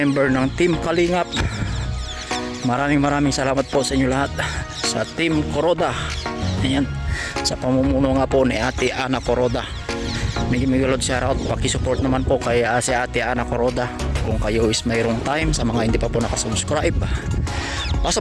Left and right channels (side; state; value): both; identical; correlation 1.00